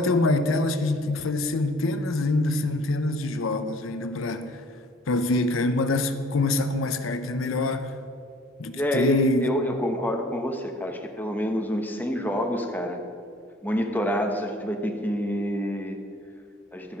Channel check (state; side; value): normal; both; correlation 0.53